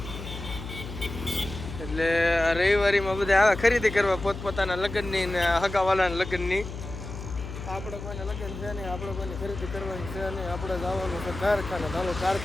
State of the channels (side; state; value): left; noise; hum, 9 dB below the sound